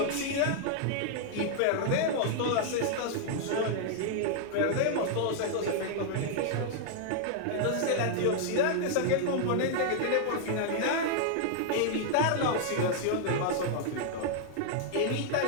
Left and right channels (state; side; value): different; both; correlation -0.01